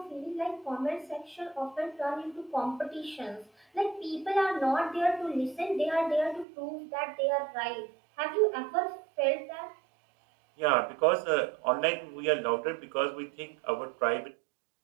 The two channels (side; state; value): left; drops out; at 6.5 s